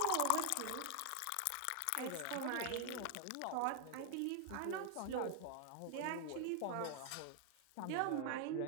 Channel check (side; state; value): both; different; correlation 0.00